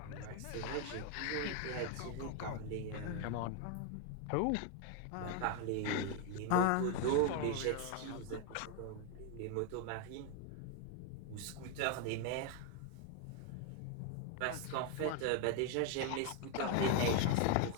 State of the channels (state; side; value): different; both; correlation 0.01